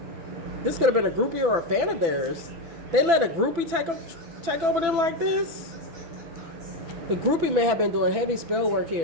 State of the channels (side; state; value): left; late; 6.0 ms